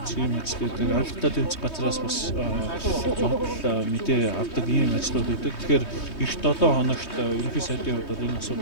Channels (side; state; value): right; late; 3.2 ms